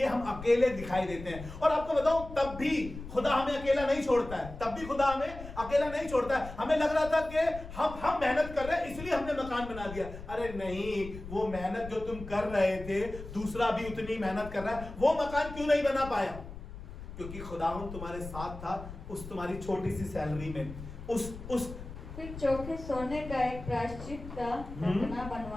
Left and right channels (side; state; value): left; noise; rumble, 12 dB below the sound